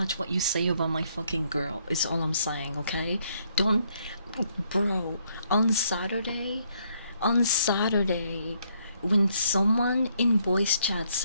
what you say about my fucking girl, is all I'm saying, okay? Don't, bro, on Saturday, when someone in voice chat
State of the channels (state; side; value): inverted; both; correlation -0.71